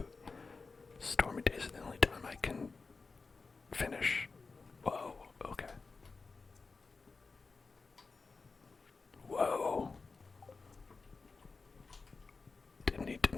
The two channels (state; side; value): quieter; right; 4.3 dB